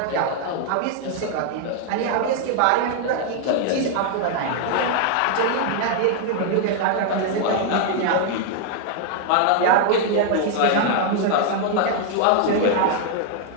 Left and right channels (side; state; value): both; different; correlation 0.00